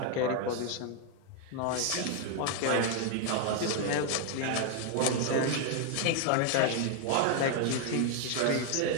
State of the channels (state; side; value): different; both; correlation 0.01